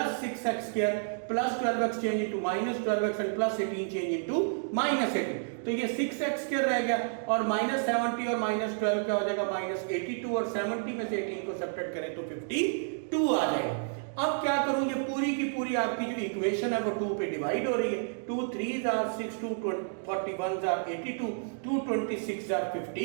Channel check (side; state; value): left; silent; digital silence